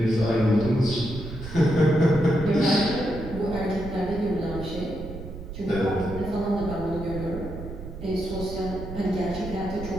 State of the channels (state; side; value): noise; right; rumble, 10 dB below the sound